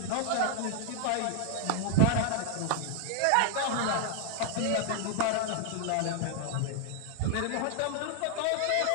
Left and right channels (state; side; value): different; both; correlation 0.00